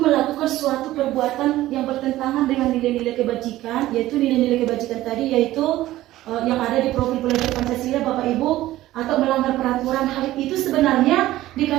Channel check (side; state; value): left; quieter; 15.5 dB